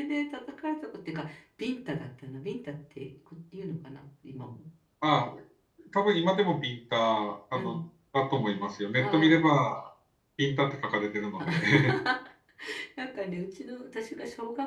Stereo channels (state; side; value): identical; both; correlation 1.00